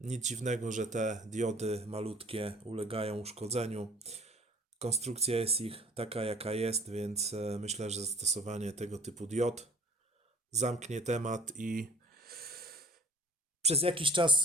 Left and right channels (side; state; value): both; normal; correlation 0.50